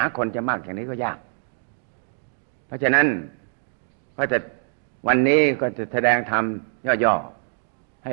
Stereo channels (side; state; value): left; silent; 62 dB below the other